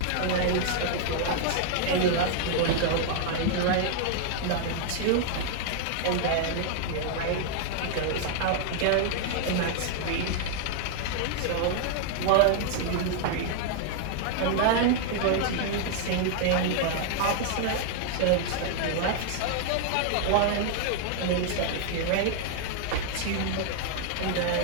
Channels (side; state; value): both; different; correlation 0.00